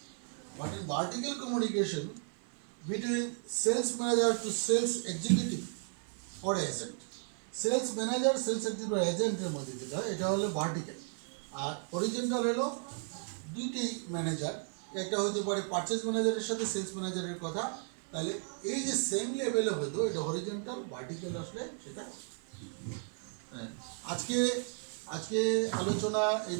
But in vertical communication between sales manager to sales executive or agent, sales manager, sales executive or agent এর মধ্যে যেটা, এটা হলো vertical, আর horizontal হলো দুইটি ম্যানেজার, একটা হতে পারে পারচেজ ম্যানেজারের সাথে সেলস ম্যানেজারের কথা, তাহলে এই যে সেম লেভেলে হয়তো এটা হরিজন্টাল, ভার্টিক্যাল আসলে সেটা। আজকে আলোচনা এই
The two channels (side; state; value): left; silent; 55 dB below the other